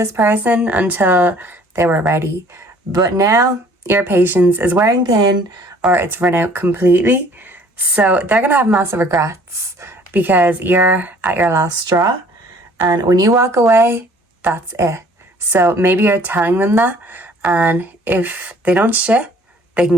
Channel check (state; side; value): normal; both; correlation 0.55